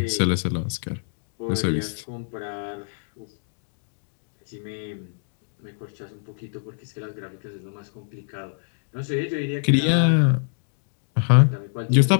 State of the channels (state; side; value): silent; right; digital silence